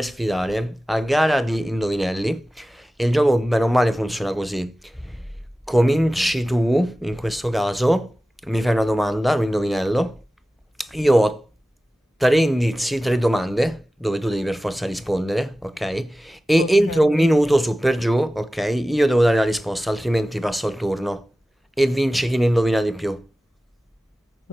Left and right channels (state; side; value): normal; both; correlation 0.96